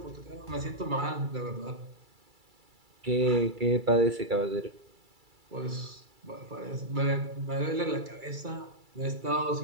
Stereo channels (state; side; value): late; left; 2.3 ms